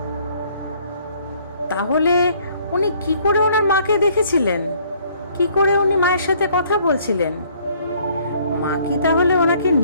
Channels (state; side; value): inverted; both; correlation -0.61